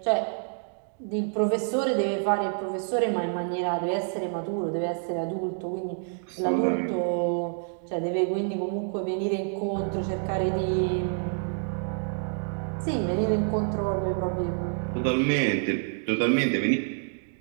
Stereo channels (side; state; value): left; silent; 60 dB below the other